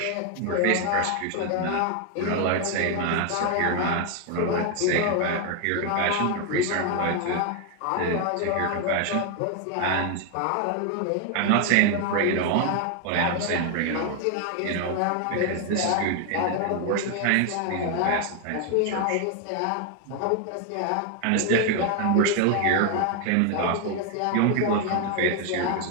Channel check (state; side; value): different; both; correlation 0.00